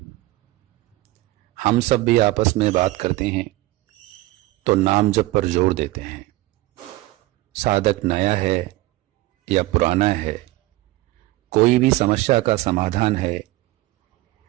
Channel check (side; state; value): left; quieter; 18.4 dB